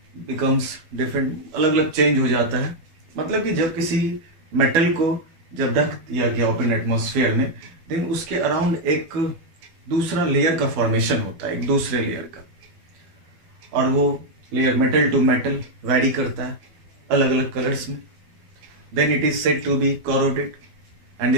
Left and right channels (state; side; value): late; left; 12 ms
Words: becomes different, अलग अलग change हो जाता है। मतलब कि जब किसी metal को जब रख दिया गया ओपन एटमॉस्फेयर में, देन उसके अराउंड एक दूसरा लेयर का फॉर्मेशन होता है, एक दूसरे लेयर का, और वो layer metal to metal vary करता है अलग अलग कलर्स में। Then it is said to be corroded and